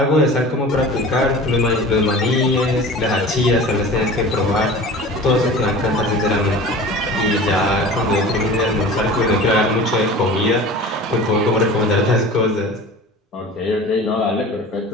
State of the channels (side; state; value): both; normal; correlation 0.38